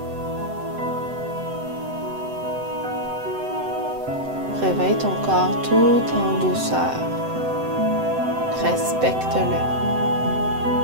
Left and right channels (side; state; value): left; late; 7.8 ms